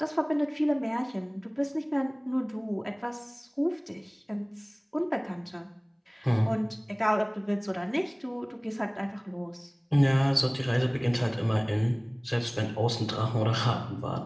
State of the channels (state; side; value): identical; both; correlation 1.00